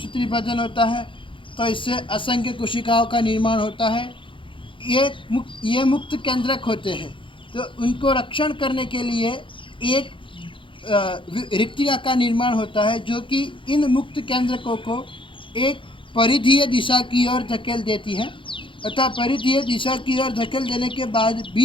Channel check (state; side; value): late; right; 0.25 ms